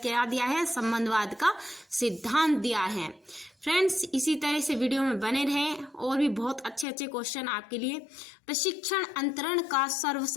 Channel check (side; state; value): right; drops out; at 6.9 s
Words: दिया है? संबंधवाद का सिद्धांत दिया है। फ्रेंड्स, इसी तरह से वीडियो में बने रहें और भी बहुत अच्छे अच्छे क्वेश्चन आपके लिए। प्रशिक्षण अंतरण का